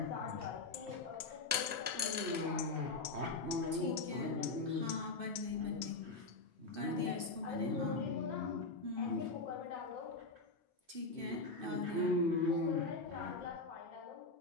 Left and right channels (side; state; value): right; quieter; 3.5 dB